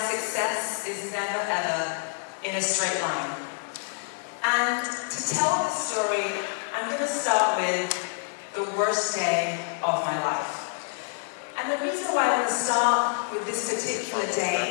is never ever in a straight line. And to tell the story, I'm going to start with the worst day of my life. And the reason why I want to start with this particular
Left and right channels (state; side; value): silent; right; digital silence